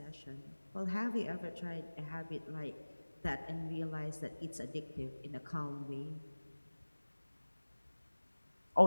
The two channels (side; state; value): both; inverted; correlation -1.00